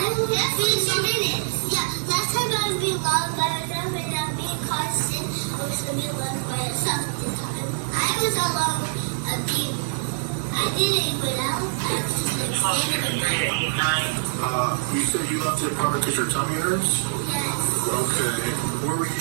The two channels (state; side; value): silent; left; 62 dB below the other